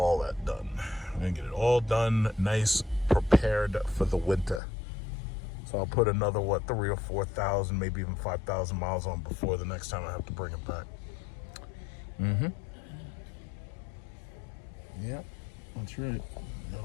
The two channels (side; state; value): right; drops out; at 4.6 s